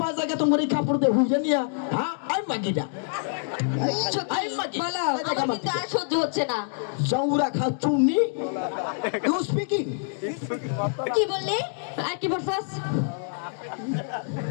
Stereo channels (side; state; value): right; silent; digital silence